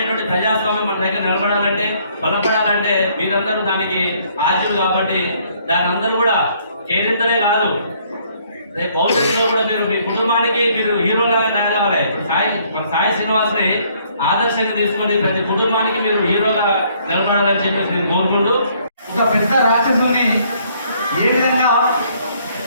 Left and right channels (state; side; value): inverted; both; correlation -0.65